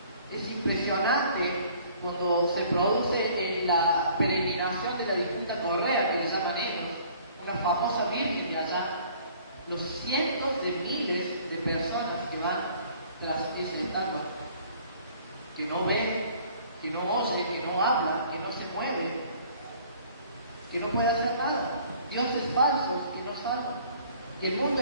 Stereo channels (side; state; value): both; inverted; correlation -0.55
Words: Es impresionante cuando se produce la peregrinación de la distinta correa, que le llaman ellos, una famosa Biblia allá, los cientos de miles de personas que van tras ese estatua, que no ven, que no oye, que no habla, que no se mueve, que no puede hacer nada. Dios es falso y no salva. Y el mundo